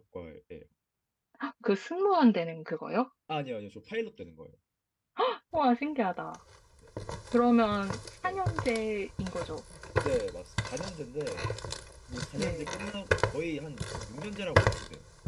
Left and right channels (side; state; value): both; identical; correlation 1.00